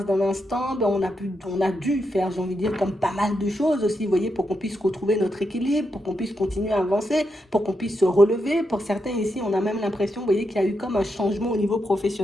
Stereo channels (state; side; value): normal; both; correlation 0.84